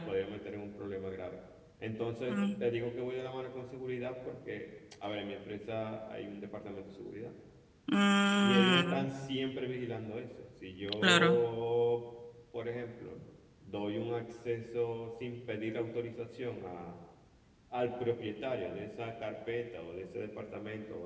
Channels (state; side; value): identical; both; correlation 1.00